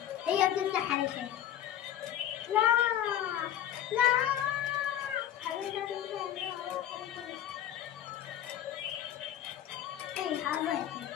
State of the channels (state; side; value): quieter; right; 11.2 dB